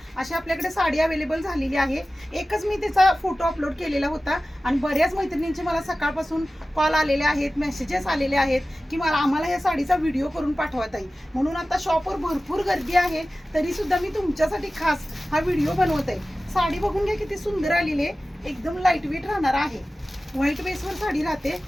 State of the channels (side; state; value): both; normal; correlation 0.96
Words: अशी आपल्याकडे साडी अवेलेबल झालेली आहे। एकच मी त्याचा फोटो अपलोड केलेला होता आणि बऱ्याच मैत्रिणींचे मला सकाळपासून कॉल आलेले आहेत, मेसेजेस आलेले आहेत की आम्हाला या साडीचा व्हिडिओ करून पाठवा ताई। म्हणून आता शॉपवर भरपूर गर्दी आहे, तरी सुद्धा मी तुमच्यासाठी खास हा व्हिडिओ बनवत आहे। साडी बघून घ्या किती सुंदर आलेली आहे, एकदम लाईट वेट राहणार आहे। व्हाईट बेसवर साडी राहते,